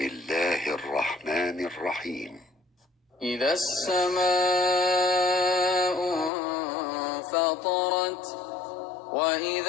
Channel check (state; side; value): drops out; right; at 6.3 s